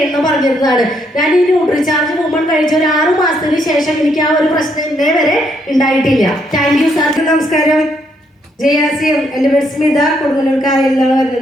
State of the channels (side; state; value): both; normal; correlation 0.73